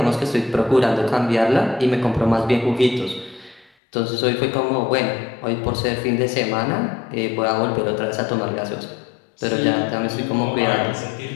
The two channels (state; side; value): drops out; right; at 3.7 s